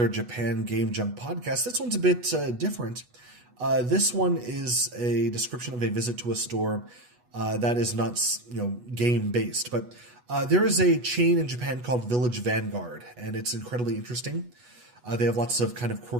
Japan Game Junk podcast. This one's a bit different. This one is a description of a visit to a store that is not, game based, but there is a chain in Japan called Village Vanguard, and it's incredibly interesting. They have lots of kind of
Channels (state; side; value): late; left; 8.2 ms